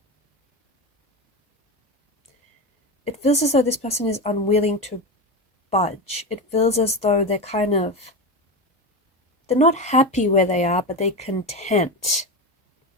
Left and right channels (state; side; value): normal; both; correlation 0.19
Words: it feels as though this person is unwilling to budge. It feels as though they're not happy where they are, but they're content.